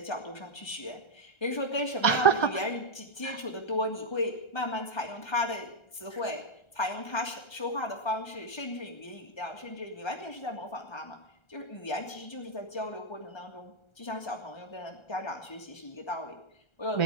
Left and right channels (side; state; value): right; late; 1.3 ms